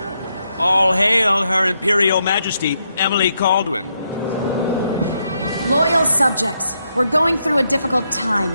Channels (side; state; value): both; inverted; correlation -0.80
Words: All hail Her Imperial Majesty, Emily Caldwin. Loyal subjects, we're going through a difficult